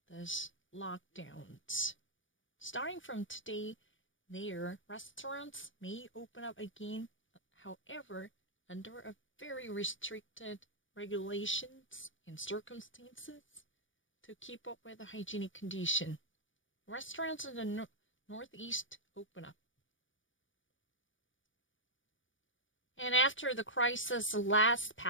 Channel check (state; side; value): late; right; 0.56 ms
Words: these lockdowns. Starting from today, their restaurants may open up again, however, under a very restricted regulations and circumstances to keep up with the hygienic condition. Restaurants in the Northeast open up. And after the crisis, last